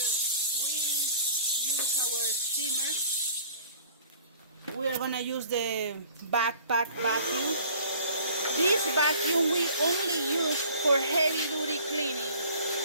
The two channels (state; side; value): inverted; both; correlation -0.50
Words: we use our steamer, we are gonna use the backpack vacuum. This vacuum we only use for heavy duty cleaning,